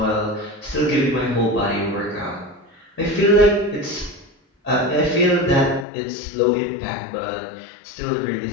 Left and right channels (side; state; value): right; drops out; at 5.9 s